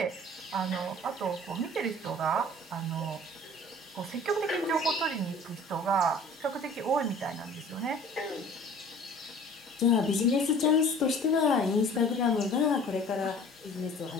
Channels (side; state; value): both; normal; correlation 0.47